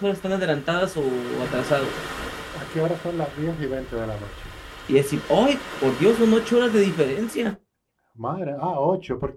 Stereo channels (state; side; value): identical; both; correlation 1.00